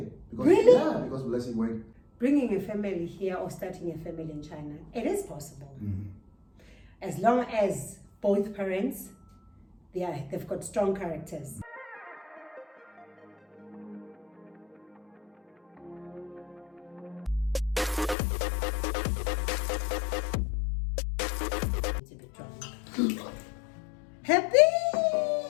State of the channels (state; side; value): drops out; right; at 18.2 s